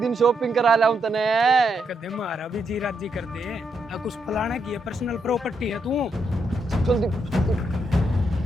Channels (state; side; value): normal; both; correlation 0.79